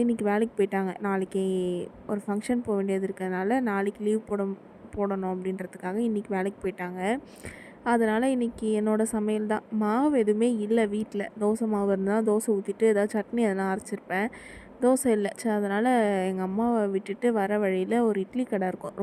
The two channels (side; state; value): both; identical; correlation 1.00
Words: இன்றைக்கி வேலைக்கு போயிட்டாங்க. நாளைக்கு ஒரு ஃபங்க்ஷன் போக வேண்டியது இருக்கிறதுனால நாளைக்கு லீவ் போடணும் அப்படின்றதுக்காக இன்றைக்கி வேலைக்கு போயிட்டாங்க. அதனால் இன்றைக்கி என்னோடய சமையல் தான். மாவு எதுவுமே இல்லை வீட்டில். தோசை மாவு இருந்தால் தோசை ஊற்றிட்டு ஏதாவது சட்னி எதனா அரைச்சிருப்பேன். தோசை இல்லை. சரி, அதனால் எங்கள் அம்மாவை விட்டுட்டு வர வழியில் ஒரு இட்லி கடை இருக்கும்.